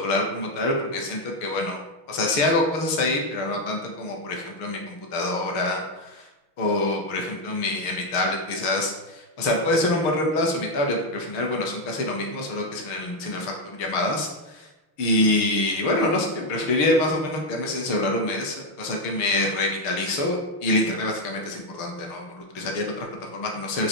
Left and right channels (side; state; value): right; late; 6.5 ms